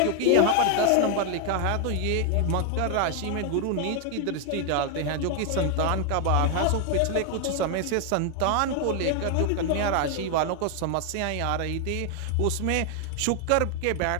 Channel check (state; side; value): different; both; correlation 0.00